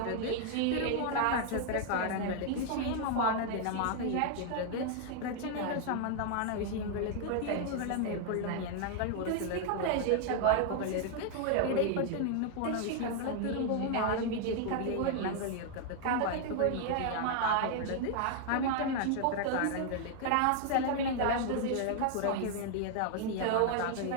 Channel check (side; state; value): both; different; correlation 0.00